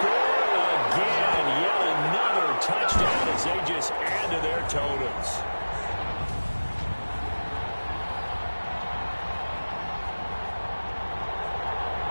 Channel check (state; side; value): inverted; both; correlation -1.00